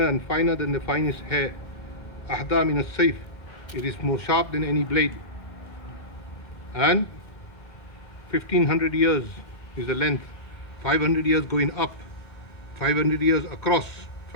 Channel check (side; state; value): right; late; 2.1 ms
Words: and finer than the finest hair. Ahda min as-sayf. It is more sharp than any blade. And 1500 years is the length. 500 years going up, 500 years across,